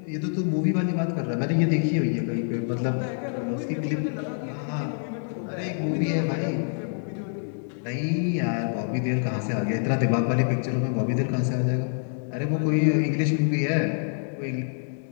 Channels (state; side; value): silent; right; digital silence